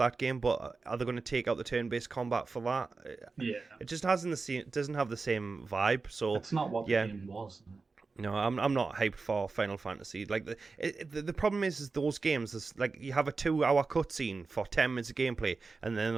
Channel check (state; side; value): quieter; left; 4.2 dB